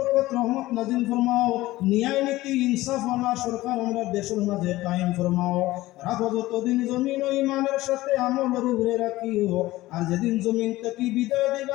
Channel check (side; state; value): right; quieter; 17.5 dB